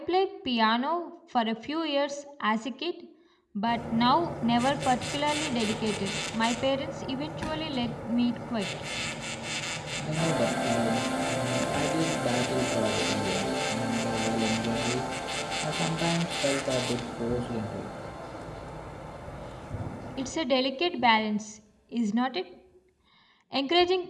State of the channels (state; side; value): identical; both; correlation 1.00